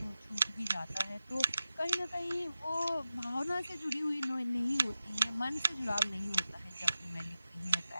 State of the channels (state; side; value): inverted; both; correlation -0.93